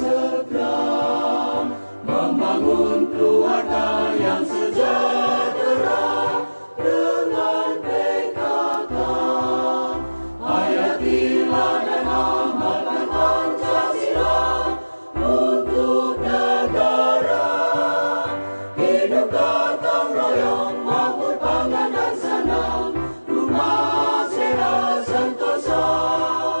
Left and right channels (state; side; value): inverted; both; correlation -1.00